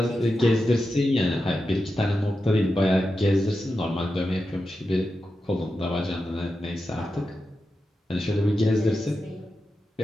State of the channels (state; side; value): normal; both; correlation 0.90